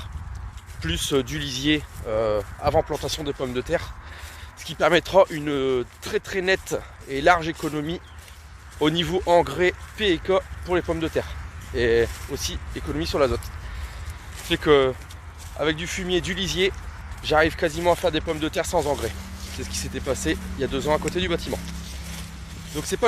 plus du lisier avant plantation de pommes de terre, ce qui permettra une très nette et large économie au niveau engrais PK pour les pommes de terre, et aussi économie sur l'azote. C'est que avec du fumier, du lisier, j'arrive quasiment à faire des pommes de terre sans engrais. C'est ce qui s'était passé il y a 2 ans à côté du bâtiment. Donc c'est pas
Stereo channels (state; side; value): identical; both; correlation 1.00